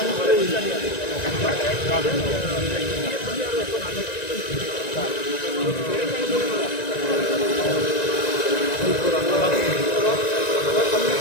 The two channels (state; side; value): late; right; 1.9 ms